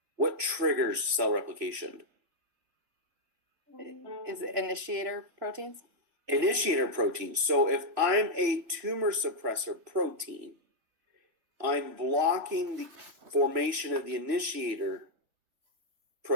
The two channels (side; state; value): left; late; 3.0 ms